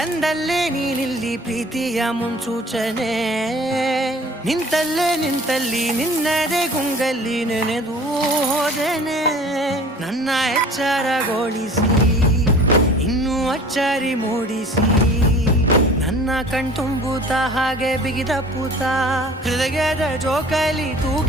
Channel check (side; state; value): both; normal; correlation 0.47